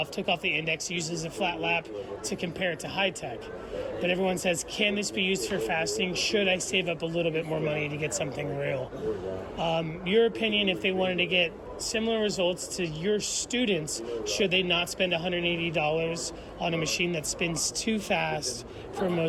took off the index, used as a flat lap to compare it to high tech. But everyone says, can this be used for fasting? Should I save up a little bit more money to get something real? Your opinion, if they wanted to get similar results to your students, should they not spend $180 on a machine that spins too fast for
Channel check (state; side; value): identical; both; correlation 1.00